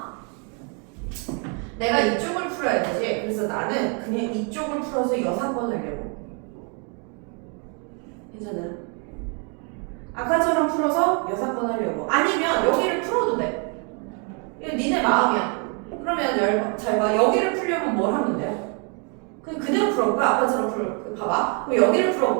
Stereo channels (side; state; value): left; quieter; 36.9 dB